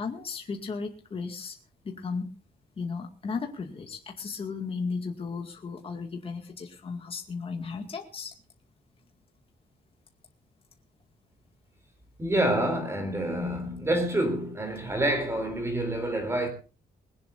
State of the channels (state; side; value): normal; both; correlation 0.66